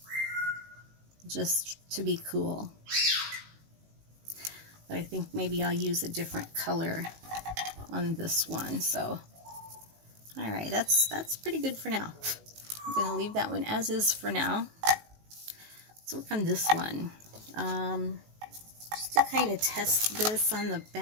just to be cool. But I think maybe I'll use a different color on this one. So, all right, that's pretty good for now. I'm going to leave that one as is for now. Let's work on this one. Just to kind of test this on the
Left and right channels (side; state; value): left; late; 19 ms